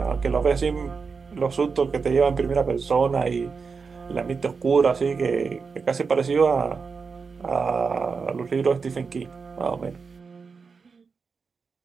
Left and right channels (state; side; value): quieter; left; 5.1 dB